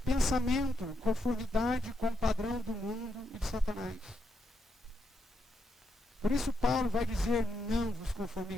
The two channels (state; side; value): normal; both; correlation 0.80